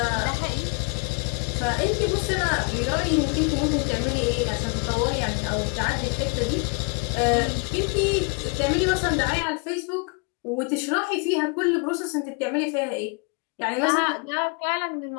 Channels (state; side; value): quieter; right; 31.6 dB